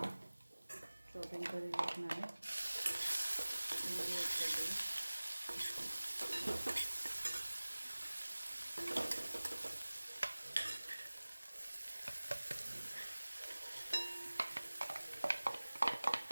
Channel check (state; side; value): inverted; both; correlation -1.00